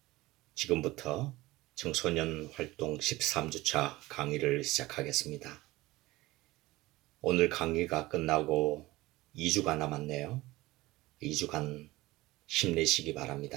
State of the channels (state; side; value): quieter; left; 19.2 dB